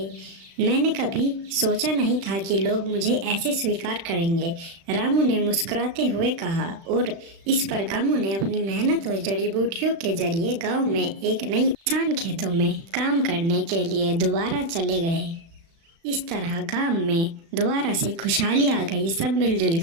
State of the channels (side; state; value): left; late; 36 ms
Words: मैंने कभी सोचा नहीं था कि लोग मुझे ऐसे स्वीकार करेंगे, रामू ने मुस्कुराते हुए कहा। और इस पर रामू ने अपनी मेहनत और जड़ी बूटियों के जरिए गांव में एक नई किसान खेतों में काम करने के लिए दोबारा चले गए। इस तरह गांव में दोबारा से खुशहाली आ गई। सब मिलजुल